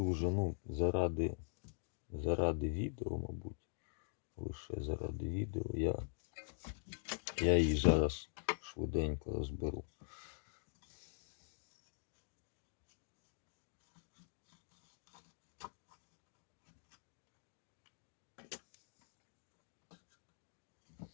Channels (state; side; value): silent; right; digital silence